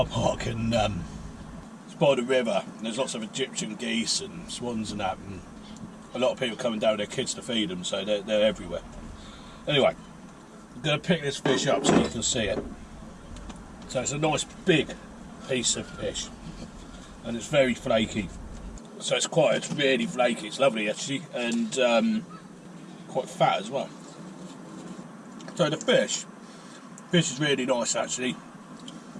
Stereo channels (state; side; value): identical; both; correlation 1.00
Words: park, and it's by the river, and there's lots of Egyptian geese and swans and that, and a lot of people coming down with their kids to feed them, so they're everywhere. Anyway, I'm going to pick this fish up so you can see it. So it's a nice big piece of fish, and it's very flaky. So it's really flaky, it's lovely actually, and quite fat as well. So the fish is really nice actually.